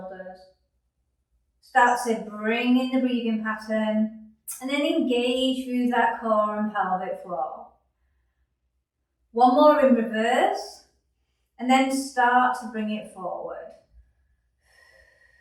Start to bring in the breathing pattern and then engage through that core and pelvic floor. One more in reverse and then start to bring it forward.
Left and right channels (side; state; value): both; identical; correlation 1.00